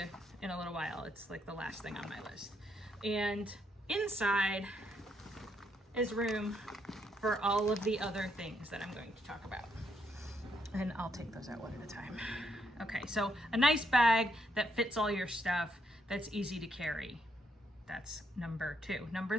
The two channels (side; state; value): both; normal; correlation 0.75